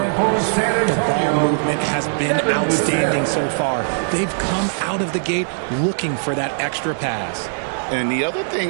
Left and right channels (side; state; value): left; silent; digital silence